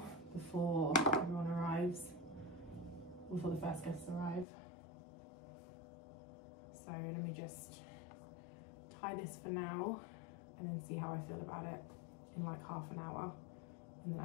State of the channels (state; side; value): drops out; right; at 4.5 s